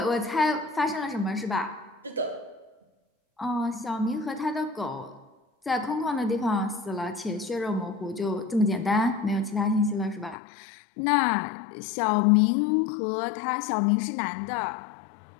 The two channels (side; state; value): right; drops out; at 10.4 s